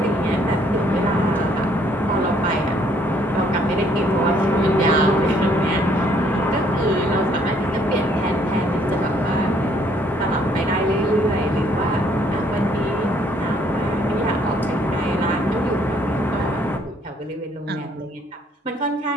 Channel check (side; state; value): both; normal; correlation 0.65